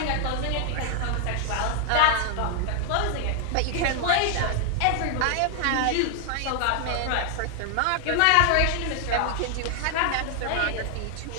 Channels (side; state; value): both; different; correlation 0.00